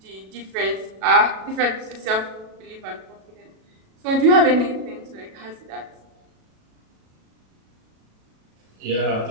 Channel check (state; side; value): late; left; 37 ms